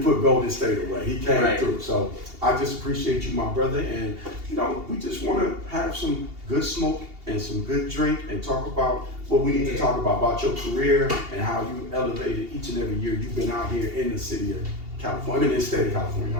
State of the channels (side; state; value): left; late; 2.8 ms